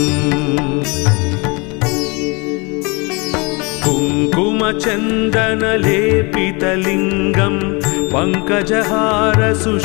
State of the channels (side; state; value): right; quieter; 29.0 dB